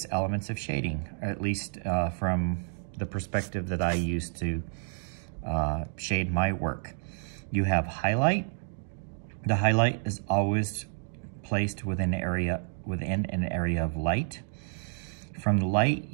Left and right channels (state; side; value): silent; left; digital silence